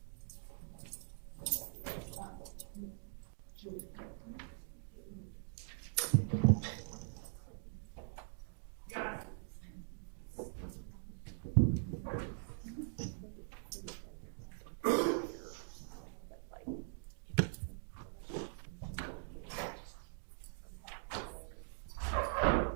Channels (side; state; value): left; silent; digital silence